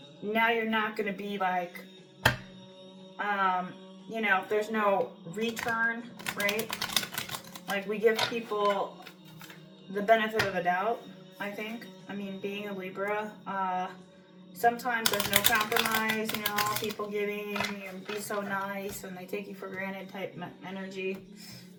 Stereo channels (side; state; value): both; identical; correlation 1.00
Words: now you're not going to be like, you know, there's no return, right? Like, we give people the benefit of a doubt, I think. I mean, being a Libra, sometimes there's no compromise, you know, people giving and be so nice and they take you for granted type energy.